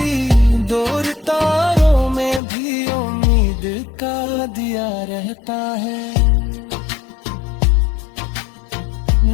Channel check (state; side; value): drops out; right; at 2.4 s